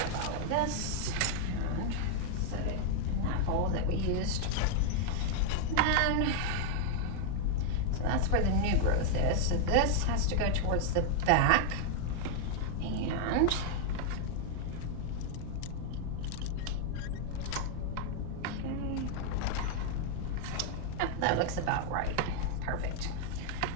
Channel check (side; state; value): both; different; correlation 0.00